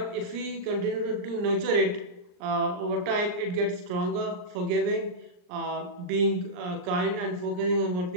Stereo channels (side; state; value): left; late; 39 ms